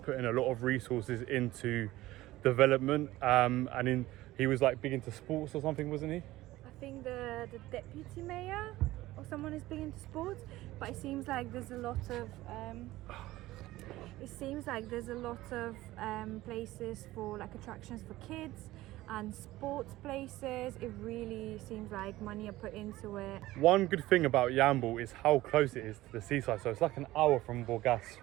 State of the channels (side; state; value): left; quieter; 17.0 dB